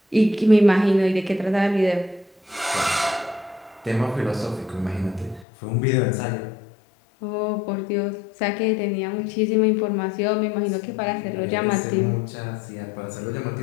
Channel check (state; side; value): drops out; right; at 5.5 s